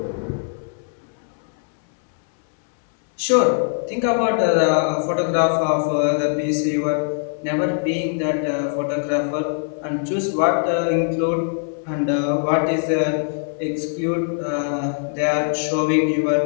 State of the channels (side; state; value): right; silent; 65 dB below the other